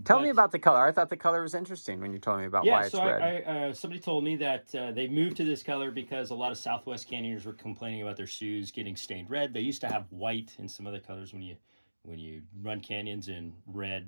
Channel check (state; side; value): inverted; both; correlation -1.00